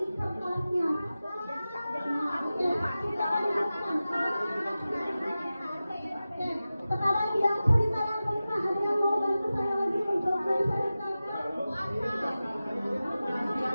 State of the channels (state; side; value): inverted; both; correlation -0.95